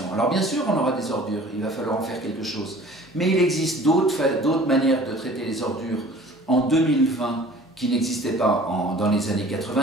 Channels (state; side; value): normal; both; correlation 0.47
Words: Alors bien sûr, on aura des ordures, il va falloir en faire quelque chose. Mais il existe d'autres manières de traiter les ordures en 2020 qui n'existaient pas dans les années